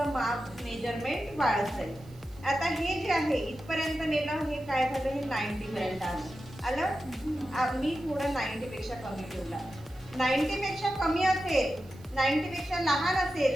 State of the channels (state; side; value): noise; right; hiss, 28 dB below the sound